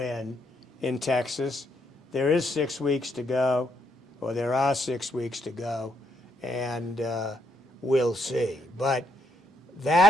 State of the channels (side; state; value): both; normal; correlation 0.75